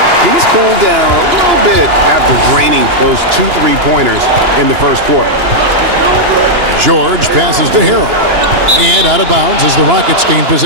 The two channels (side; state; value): left; late; 2.9 ms